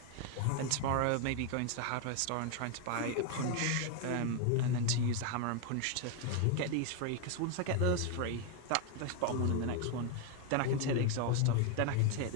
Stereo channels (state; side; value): different; both; correlation 0.01